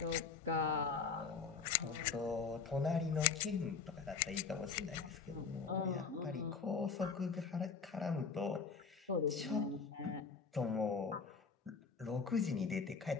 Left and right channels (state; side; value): quieter; right; 5.3 dB